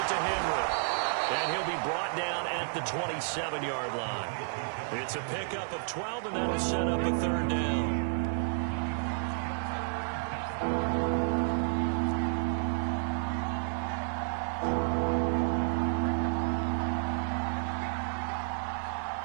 to Henry. And he'll be brought down at the 27-yard line. It's a pickup of 12, and that'll set up a third down.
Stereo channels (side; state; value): left; silent; digital silence